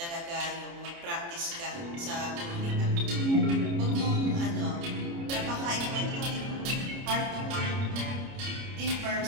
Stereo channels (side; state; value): left; late; 29 ms